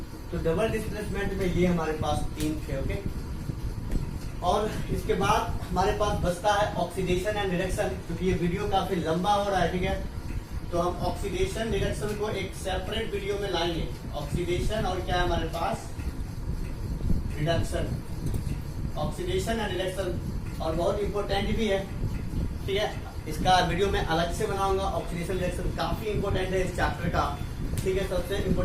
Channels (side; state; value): both; identical; correlation 1.00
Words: तो डबल डिस्प्लेसमेंट में ये हमारे पास 3 थे। ओके, और इसके बाद हमारे पास बचता है ऑक्सीडेशन एंड रिडक्शन, क्योंकि ये वीडियो काफी लंबा हो रहा है। ठीक है, तो हम ऑक्सीडेशन रिडक्शन को एक सेपरेट वीडियो में लाएंगे। ऑक्सीडेशन और क्या है हमारे पास? रिडक्शन, ऑक्सीडेशन एंड रिडक्शन, और बहुत इंपॉर्टेंट भी है। ठीक है, इसका वीडियो मैं अलग से बनाऊंगा। ऑक्सीडेशन रिएक्शन काफी इंपॉर्टेंट है इस चैप्टर का। ठीक है, सबसे